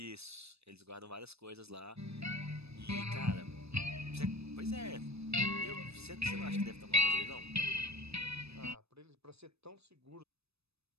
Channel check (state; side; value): late; left; 0.79 ms